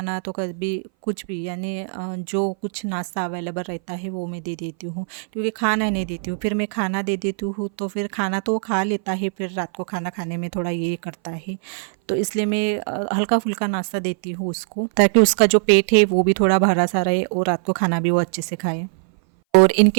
तो कभी कुछ भी, यानी जो कुछ नाश्ता अवेलेबल रहता है वो मैं दे देती हूँ, क्योंकि खाना नहीं देती हूँ फिर मैं खाना दे देती हूँ तो फिर खाना तो वो खा लेता है, फिर रात को खाना खाने में थोड़ा ये करता है, तो इसलिए मैं हल्का फुल्का नाश्ता देती हूँ उसको, ताकि उसका जो पेट है वो भी थोड़ा भरा सा रहे और रात को खाना भी वो अच्छे से खाए। और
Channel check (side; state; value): left; silent; 60 dB below the other